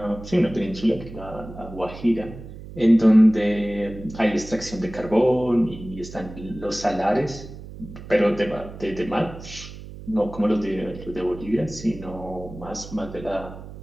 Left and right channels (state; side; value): noise; right; hum, 14 dB below the sound